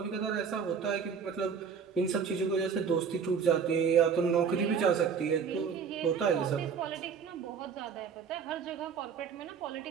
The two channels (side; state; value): left; quieter; 6.5 dB